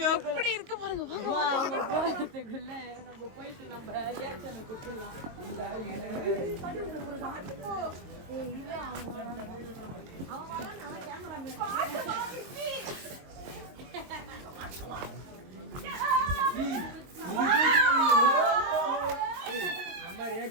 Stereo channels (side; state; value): left; late; 22 ms